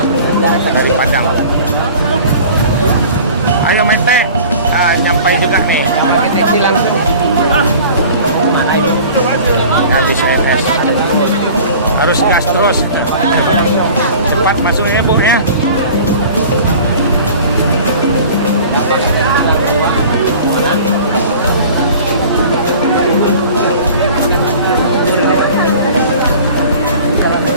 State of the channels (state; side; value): inverted; both; correlation -0.44